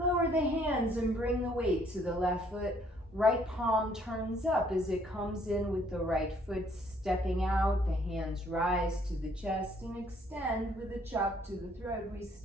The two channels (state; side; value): normal; both; correlation 0.64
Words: the hands and bring the weight to the left foot. Right palm turns up as it comes in with the right foot stepping out. The hands rise to the chest and extend with a chop to the throat. We